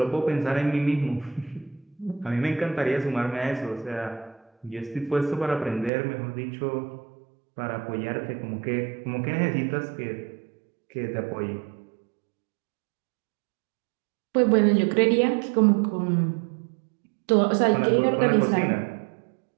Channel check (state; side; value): drops out; left; at 5.9 s